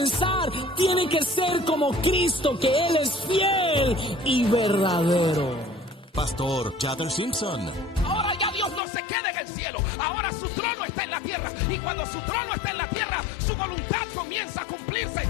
tiene que ser como Cristo, que Él es fiel y verdadero. Pastor Chadder Simpson. Ahora ya Dios no se queda en el cielo. Ahora su trono está en la tierra. Y cuando su trono está en la tierra, su voluntad comienza a cumplirse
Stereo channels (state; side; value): drops out; right; at 8.8 s